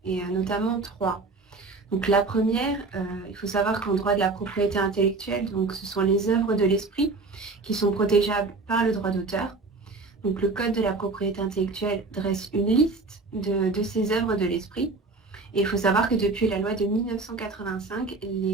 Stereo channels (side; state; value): left; quieter; 3.7 dB